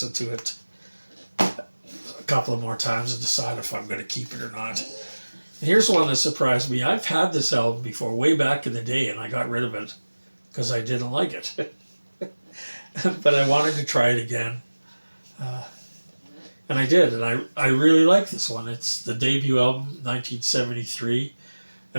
to it a couple of more times and decide if I'm going to keep it or not. And here's one that surprised me. I've had this album before, way back in the day, and I got rid of it because I didn't like it. But I wanted to try it again. And I did, and I really like this one. It's the debut album, 1973.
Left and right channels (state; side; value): inverted; both; correlation -1.00